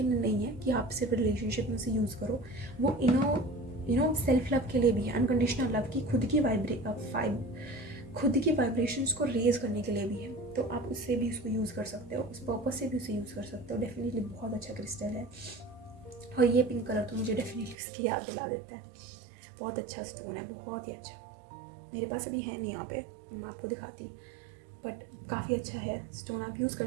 लिए नहीं है कि आप सिर्फ रिलेशनशिप में उसे यूज़ करो, वो सेल्फ लव के लिए भी है, अनकंडीशनल लव की खुद की वाइब्रेशंस को रेज करने के लिए भी है। तो आप उससे भी उसको यूज़ कर सकते हो, उस पर्पज से भी उसे यूज़ कर सकते हो। डेफिनेटली बहुत अच्छा क्रिस्टल है, और ये पिंक कलर तो मुझे डेफिनेटली उसकी याद दिला देता है। बहुत अच्छा स्टोन है, बहुत ही अच्छा। मेरे पास अभी है नहीं यहाँ पे, मैं आपको दिखाती, बट काफ़ी अच्छा है स्टोन। आप यूज़ कर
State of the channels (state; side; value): drops out; left; at 17.8 s